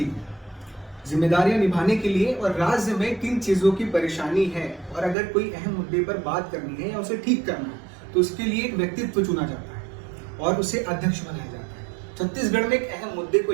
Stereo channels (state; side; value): drops out; left; at 5.2 s